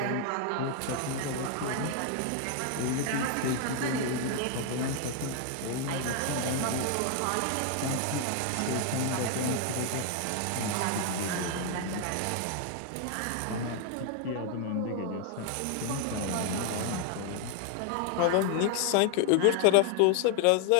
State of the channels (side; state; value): both; different; correlation 0.00